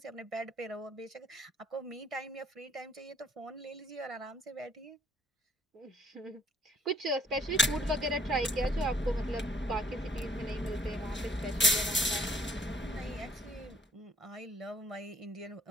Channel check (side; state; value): both; normal; correlation 0.62